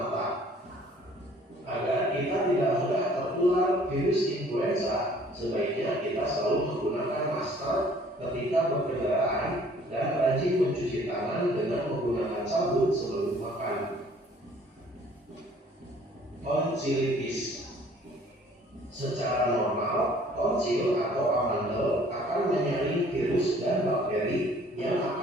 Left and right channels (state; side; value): normal; both; correlation 0.56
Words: Agar kita tidak mudah tertular virus influenza, sebaiknya kita selalu menggunakan masker ketika berkendaraan dan rajin mencuci tangan dengan menggunakan sabun sebelum makan. Tonsilitis. Secara normal, tonsil atau amandel akan menyaring virus dan bakteri yang